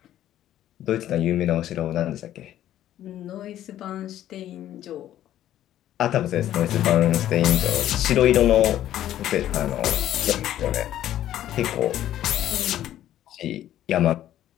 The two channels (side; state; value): right; quieter; 12.3 dB